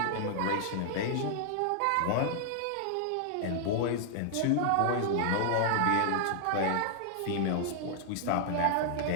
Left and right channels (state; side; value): different; both; correlation -0.01